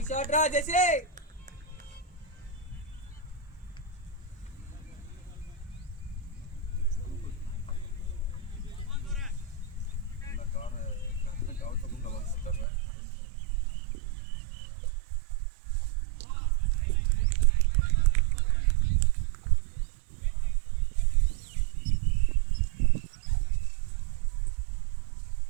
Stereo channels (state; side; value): drops out; left; at 12.7 s